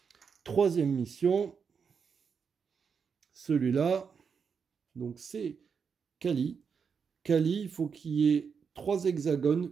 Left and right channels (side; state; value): left; quieter; 6.2 dB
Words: Troisième mission, celui-là, donc c'est Kali. Kali, il faut qu'il y ait 3 hexagones